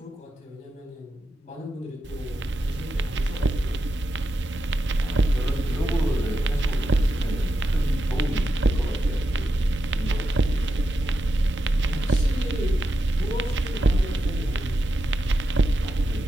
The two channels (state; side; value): normal; both; correlation 0.88